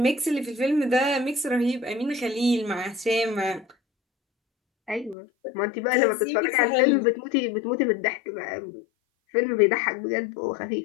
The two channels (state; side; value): drops out; right; at 5.2 s